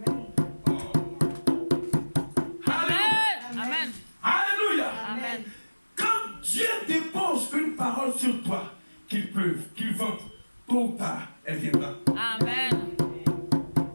Alléluia. Amen. Alléluia. Amen. Quand Dieu dépose une parole sur toi, qu'il pleuve, qu'il vente, tôt ou tard, elle viendra. Amen.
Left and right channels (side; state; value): both; inverted; correlation -1.00